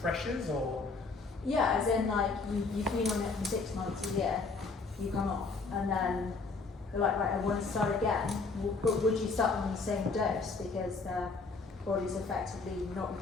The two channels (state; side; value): quieter; right; 4.1 dB